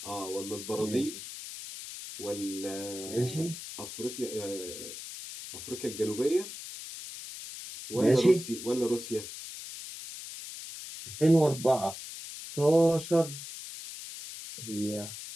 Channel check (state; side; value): noise; left; hiss, 10 dB below the sound